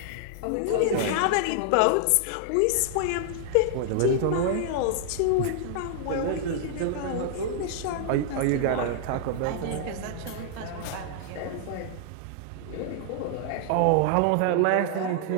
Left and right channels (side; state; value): both; different; correlation -0.01